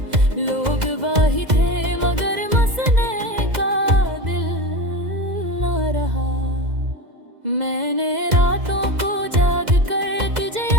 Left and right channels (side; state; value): left; late; 2.0 ms